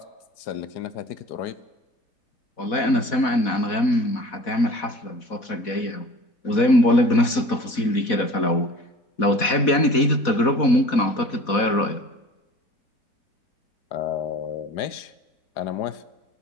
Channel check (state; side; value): late; right; 4.1 ms